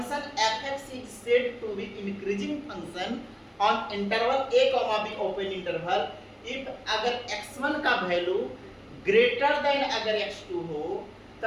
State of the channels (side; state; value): both; identical; correlation 1.00